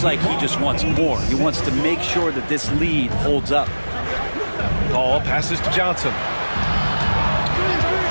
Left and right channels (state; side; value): inverted; both; correlation -1.00